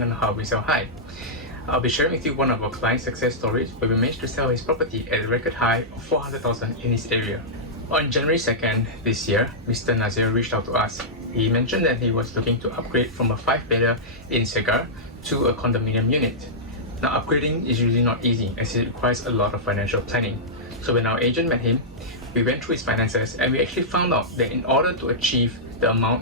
on how we sell high. I'll be sharing with you one of our client success stories where we managed to sell his property at a record high of 400,000 in his area. On January 2nd this year, Mr. Nazir reached out to us. He mentioned that he was looking to upgrade from a 5-bedder in Segar to a condominium unit. Now, upgrading is usually not easy as it requires a lot of financial planning. So when our agent met him, we went through his finances and we actually found out that in order to achieve the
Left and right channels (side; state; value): both; normal; correlation -0.12